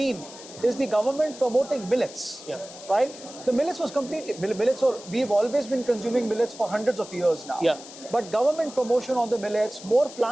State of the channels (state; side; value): noise; left; hiss, 16 dB below the sound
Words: is the government promoting millets, right? The millets was we've always been consuming millets for hundreds of years now. But government promotion on the millets, more